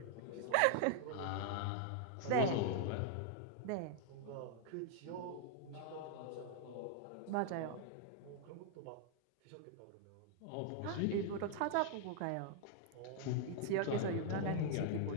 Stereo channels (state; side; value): different; both; correlation 0.00